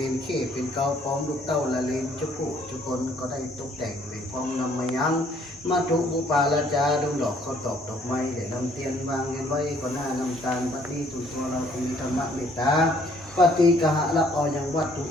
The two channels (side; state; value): both; normal; correlation 0.62